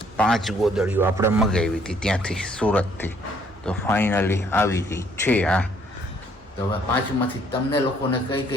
5 ગોદડીઓ આપણે મગાવી હતી ત્યાંથી સુરતથી. તો ફાઇનલી આવી ગઈ છે આ. તો હવે 5માંથી તમને લોકોને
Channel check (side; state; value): both; normal; correlation 0.64